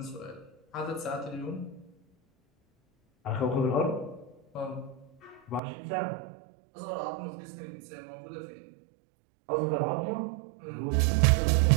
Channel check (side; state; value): left; drops out; at 5.6 s